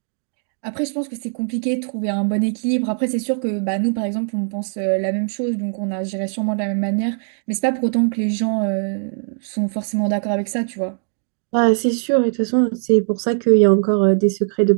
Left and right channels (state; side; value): silent; left; 61 dB below the other